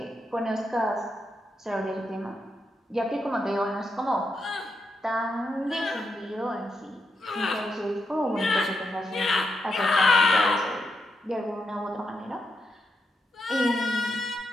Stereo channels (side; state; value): both; normal; correlation 0.83